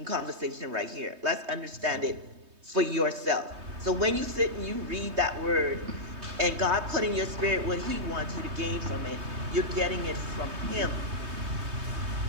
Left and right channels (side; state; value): left; late; 3.2 ms